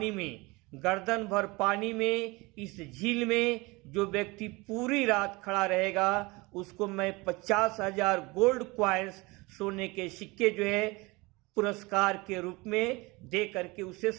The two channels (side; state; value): left; quieter; 24.1 dB